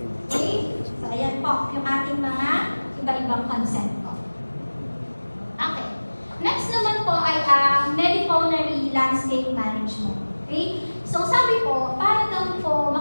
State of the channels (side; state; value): both; inverted; correlation -1.00